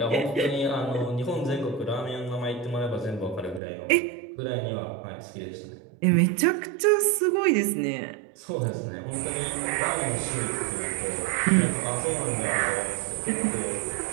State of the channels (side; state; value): left; drops out; at 3.6 s